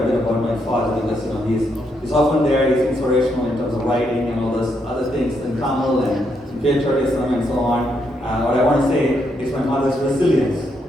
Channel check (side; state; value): both; normal; correlation 0.77